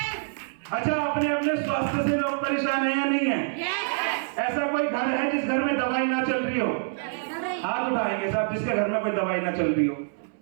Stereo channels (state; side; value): silent; left; 61 dB below the other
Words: अच्छा, अपने अपने स्वास्थ्य से लोग परेशान है या नहीं है? ऐसा कोई घर है जिस घर में दवाई ना चल रही हो? हाथ उठाएंगे साहब जिसके घर में कोई दवाई ना चल रही हो